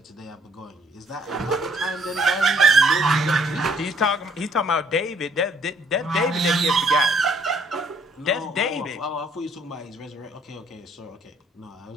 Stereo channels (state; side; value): normal; both; correlation 0.63